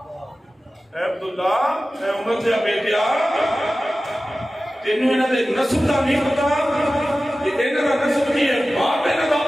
اے عبداللہ اے عمر دے بیٹیا تینوں انہاں دے نسب دا نہیں پتا کہ انہاں دا نسب کی ہے باپ انہاں دا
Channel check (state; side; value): normal; both; correlation 0.95